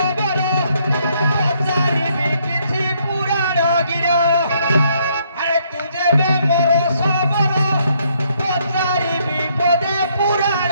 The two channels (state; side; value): inverted; both; correlation -0.70